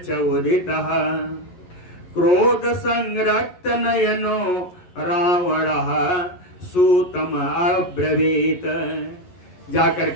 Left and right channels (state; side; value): late; right; 11 ms